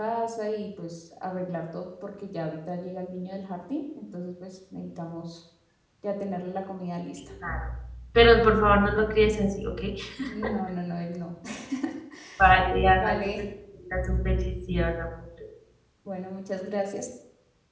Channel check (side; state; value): both; identical; correlation 1.00